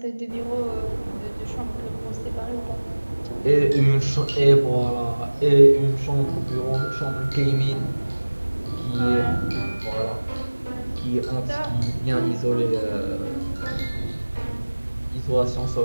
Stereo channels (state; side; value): inverted; both; correlation -1.00